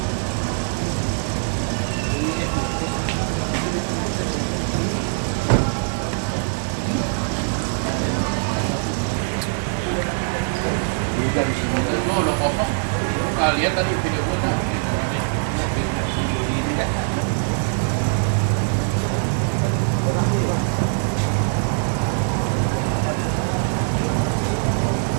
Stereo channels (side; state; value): left; silent; digital silence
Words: Udah di sini, udah kopas, kalian tadi video